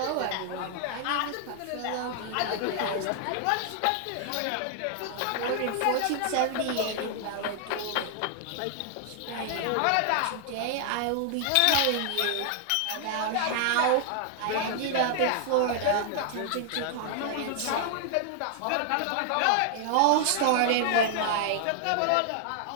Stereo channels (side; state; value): both; different; correlation 0.00